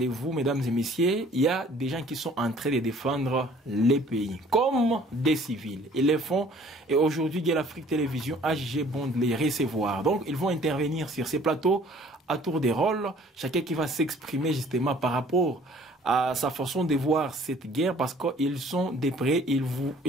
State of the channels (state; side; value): normal; both; correlation 0.54